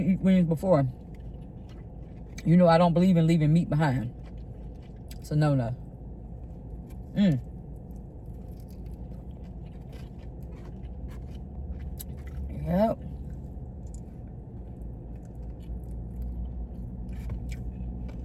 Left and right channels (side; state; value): both; identical; correlation 1.00